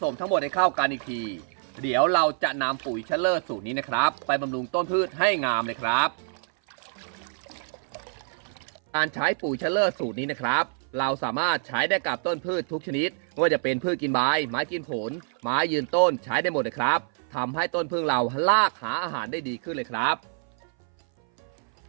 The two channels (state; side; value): silent; left; 58 dB below the other